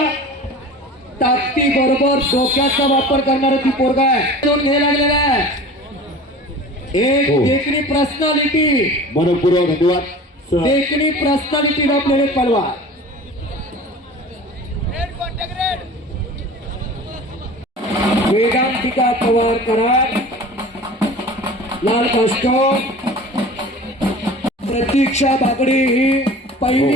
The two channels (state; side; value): normal; both; correlation 0.39